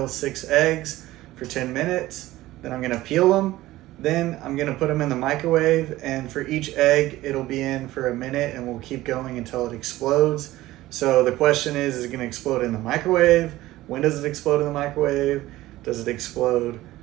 6 eggs for 10 minutes, then I'm gonna peel them, then I'm gonna put them in the microwave, and for each egg it'll be in for a minute and we'll keep going until it explodes. So the question is it gonna explode in the microwave? When does it explode in the microwave? Does it explode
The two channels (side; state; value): left; quieter; 16.7 dB